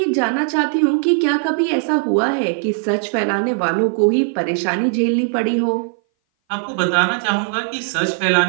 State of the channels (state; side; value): silent; left; 59 dB below the other